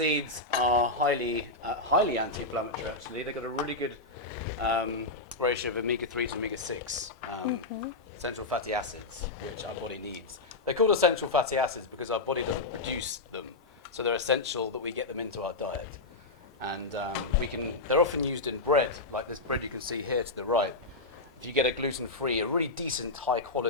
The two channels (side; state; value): right; quieter; 3.2 dB